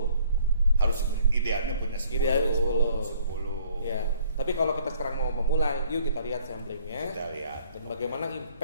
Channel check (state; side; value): inverted; both; correlation -0.59